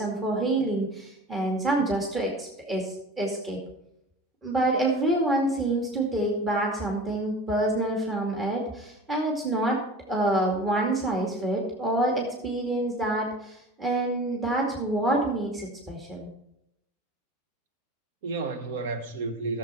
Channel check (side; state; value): both; normal; correlation 0.38